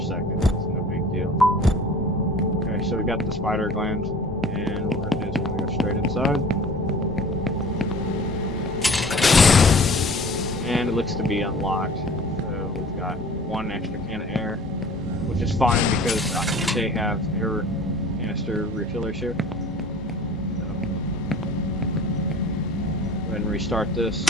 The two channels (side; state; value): both; normal; correlation 0.45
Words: no big deal. Okay, so we got the spider gland, and what we're going to do is we're going to go straight inside. And it looks to be unlocked. So we've got one extra can of air, which is fine because they have air canister refillers here. So, go ahead and restart this.